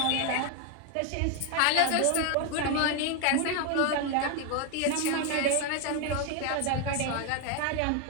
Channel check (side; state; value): both; different; correlation 0.01